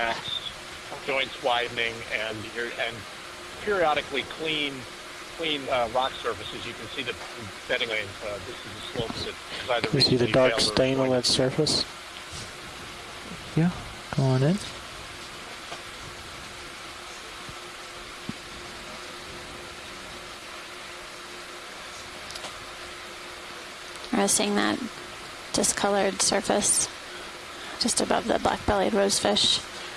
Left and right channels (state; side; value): identical; both; correlation 1.00